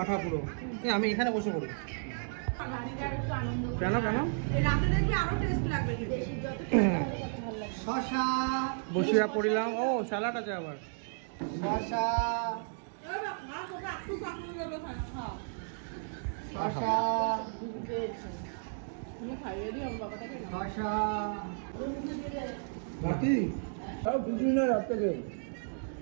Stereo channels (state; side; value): silent; left; digital silence